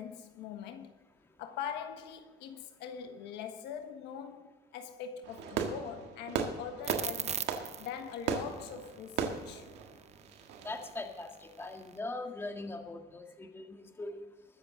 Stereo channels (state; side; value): normal; both; correlation 0.26